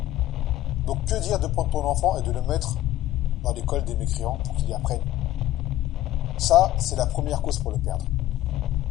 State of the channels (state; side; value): quieter; right; 14.1 dB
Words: Donc que dire de prendre ton enfant et de le mettre dans l'école des mécréants pour qu'il y apprenne? Ça, c'est la première cause pour le perdre.